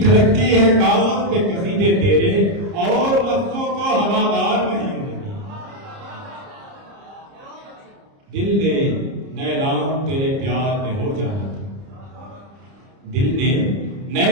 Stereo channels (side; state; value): left; late; 30 ms